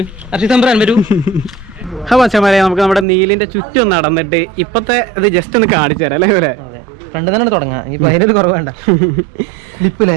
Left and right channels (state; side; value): drops out; left; at 3.1 s